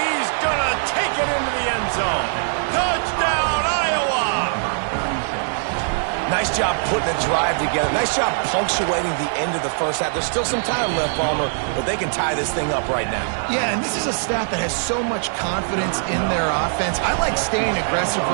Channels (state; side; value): silent; left; 59 dB below the other